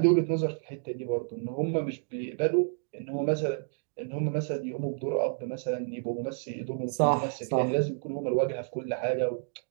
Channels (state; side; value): silent; left; digital silence